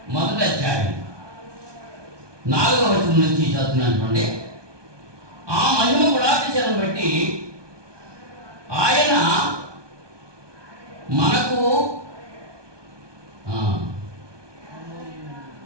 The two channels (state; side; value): late; left; 1.2 ms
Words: 1వ అధ్యాయం 4వ వచనం నుంచి చదువుతున్నాను చూడండి. ఆ మహిమ గుణాతిశయం బట్టి ఆయన మనకు